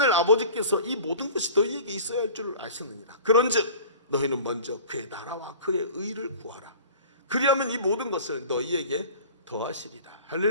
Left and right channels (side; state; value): both; inverted; correlation -0.42